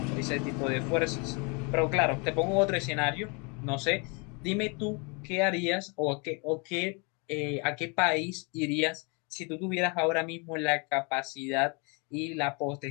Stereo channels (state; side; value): quieter; right; 32.2 dB